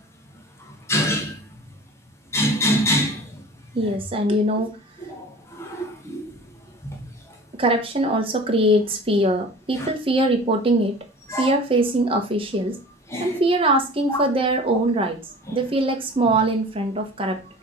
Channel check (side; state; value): both; normal; correlation 0.41